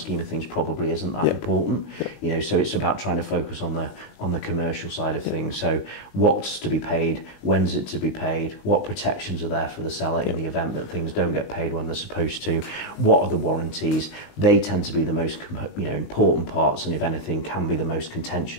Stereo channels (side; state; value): right; late; 19 ms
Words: of things probably isn't that important. You know, so it's about trying to focus on the commercial side of things. So what's to be paid, when's it to be paid, what protections are there for the seller in the event that things don't get paid when they're supposed to, what are the warranties. They tend to be the most important parts, and if anything can be the most